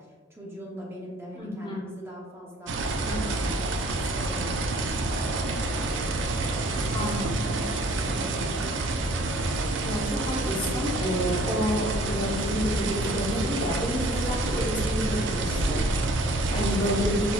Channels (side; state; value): both; normal; correlation 0.55